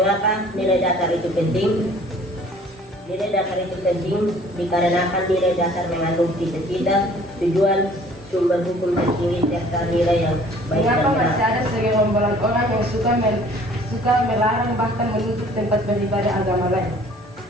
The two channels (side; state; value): both; normal; correlation 0.53